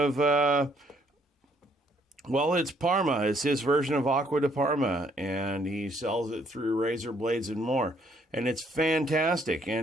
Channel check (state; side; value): normal; both; correlation 0.67